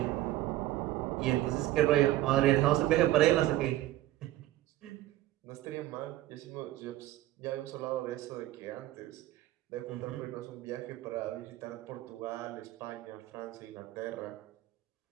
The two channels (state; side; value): quieter; left; 15.2 dB